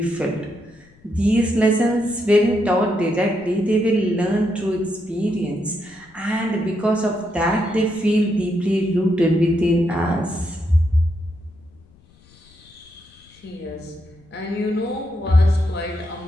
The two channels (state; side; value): noise; left; rumble, 28 dB below the sound